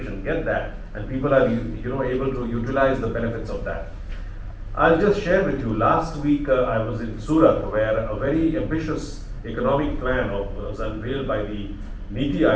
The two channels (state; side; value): identical; both; correlation 1.00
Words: get that, and people are able to utilize the benefits of that. I'll just share with you. Last week I was in Surat, where a very ambitious economic plan was unveiled by the Niti